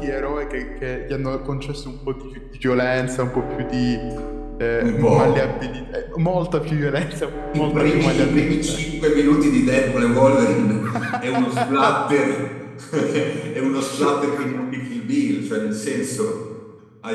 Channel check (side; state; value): both; identical; correlation 1.00